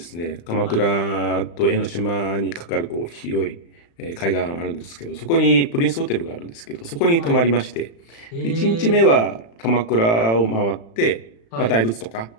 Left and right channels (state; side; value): late; right; 35 ms